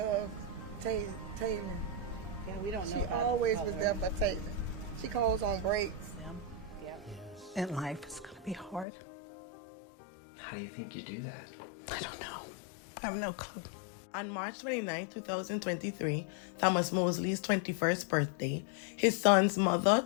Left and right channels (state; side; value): drops out; right; at 8.8 s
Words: Taylen. Yeah, we don't know. She always was there for Taylen. She calls on breaks. Yeah. And life is going to be hard. How do you think you do that? I don't know. I have no clue. On March 29, 2023, Thomas Mosley's 21st birthday, his son's mother,